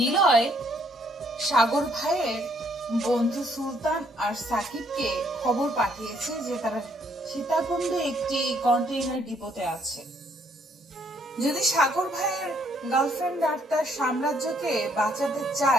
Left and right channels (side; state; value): both; normal; correlation 0.69